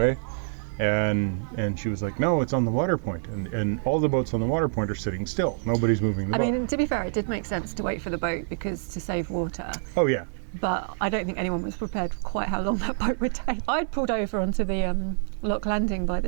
And she was like, no, it's on the water point. And all the boats on the water point are sitting still. Nobody's moving the boat. I mean, to be fair, it did make sense to wait for the boat because to save water. Oh, yeah. But I don't think anyone was prepared for quite how long that boat would take. I'd pulled over onto the lock landing by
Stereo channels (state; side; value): silent; left; digital silence